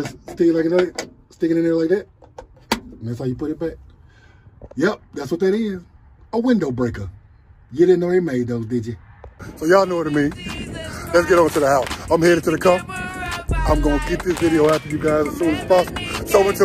stick it like that, stick it in there like that. And that's how you put it back. Yep, that's what that is. A window breaker. You didn't know they made those, did you? So y'all know what I mean. Let's get on to the house. I'm headed to the car. I'm going to get this video out to you guys as soon as possible. So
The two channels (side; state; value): both; identical; correlation 1.00